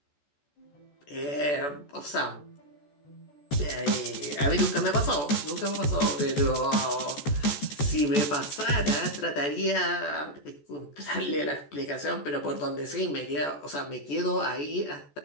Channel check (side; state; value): right; late; 14 ms